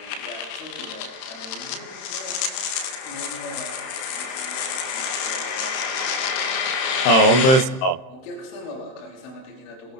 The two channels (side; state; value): right; late; 31 ms